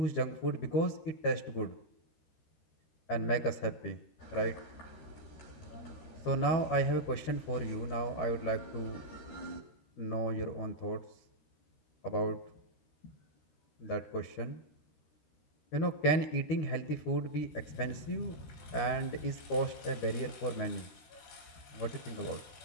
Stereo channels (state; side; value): late; right; 12 ms